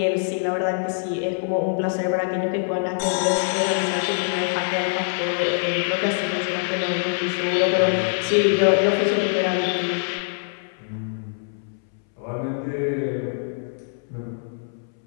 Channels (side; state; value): right; silent; 63 dB below the other